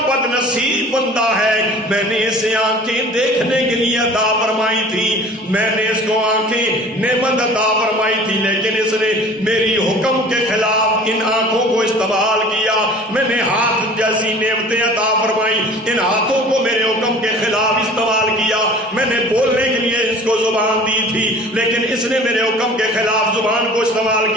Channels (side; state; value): both; normal; correlation 0.45